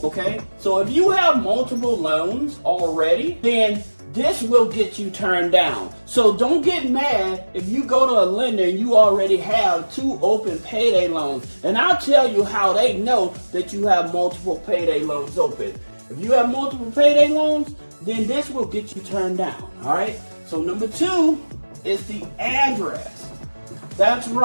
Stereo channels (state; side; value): inverted; both; correlation -1.00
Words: Okay. So if you have multiple loans already, then this will get you turned down. So don't get mad if you go to a lender and you already have 2 open payday loans. And I'll tell you how they know that you have multiple payday loans open. If you have multiple payday loans, then this will get you turned down. All right. So number 2 is the address. That's